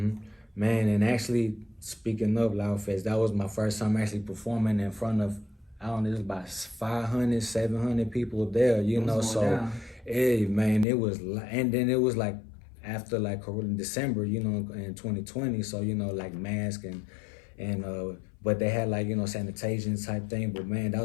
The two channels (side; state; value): right; drops out; at 10.9 s